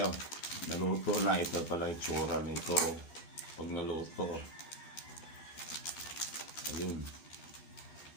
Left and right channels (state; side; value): late; right; 12 ms